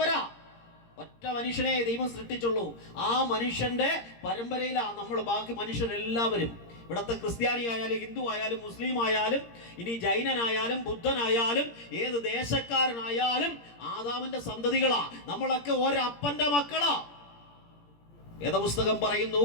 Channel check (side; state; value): right; late; 17 ms